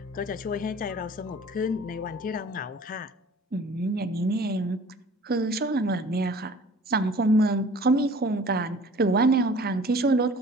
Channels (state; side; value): normal; both; correlation 0.48